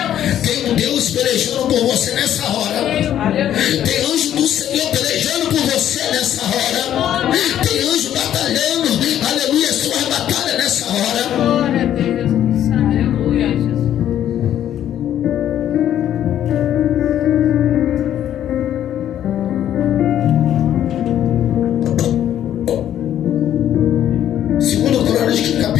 Tem um Deus pelejando por você nessa hora. Tem anjo do Senhor pelejando por você nessa hora. Tem anjo batalhando, aleluia, sua batalha nessa hora. Glória a Deus. Aleluia, Jesus. Segundo Crônicas,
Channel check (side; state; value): right; quieter; 11.0 dB